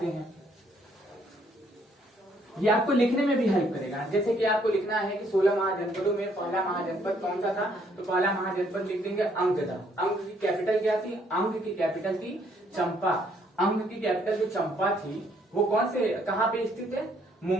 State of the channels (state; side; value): normal; both; correlation 0.67